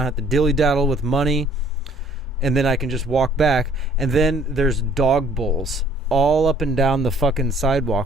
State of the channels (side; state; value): both; normal; correlation 0.59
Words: have to dilly-daddle with money, and then I can just walk back. And then there's dog bowls all up and down the fucking